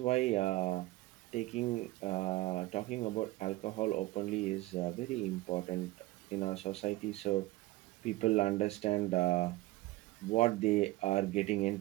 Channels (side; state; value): left; quieter; 18.0 dB